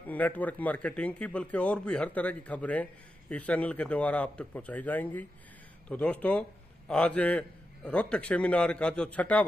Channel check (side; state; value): both; normal; correlation 0.88